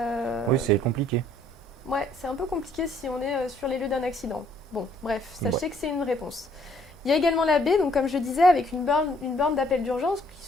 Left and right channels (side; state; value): both; normal; correlation 0.64